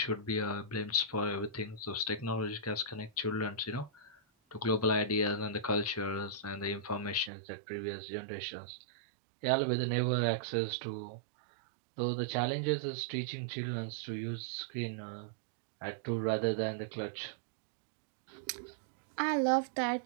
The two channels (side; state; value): left; drops out; at 7.3 s